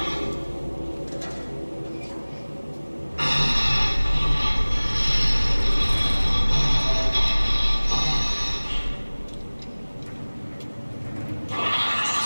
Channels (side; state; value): both; inverted; correlation -1.00